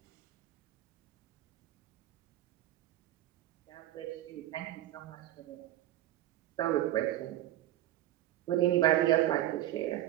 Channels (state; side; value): quieter; left; 13.8 dB